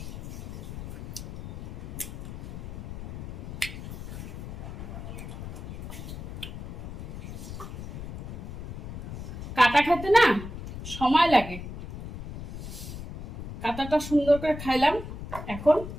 কাটা খেতে না সময় লাগে, কাটাটা সুন্দর করে খাইলাম। এখন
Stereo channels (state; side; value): noise; left; rumble, 9 dB below the sound